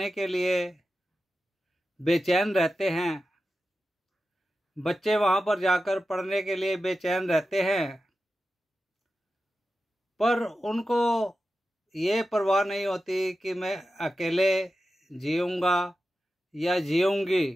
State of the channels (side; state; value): both; normal; correlation 0.92